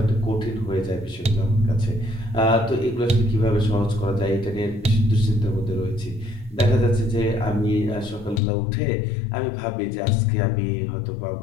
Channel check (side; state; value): right; drops out; at 8.4 s